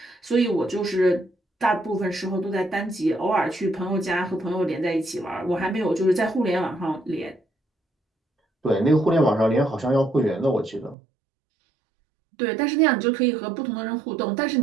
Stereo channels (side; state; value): left; drops out; at 11.0 s